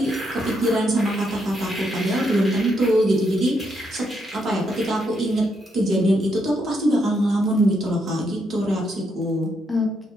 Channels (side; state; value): both; normal; correlation 0.78